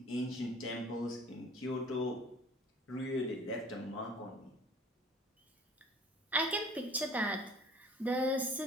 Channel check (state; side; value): normal; both; correlation 0.49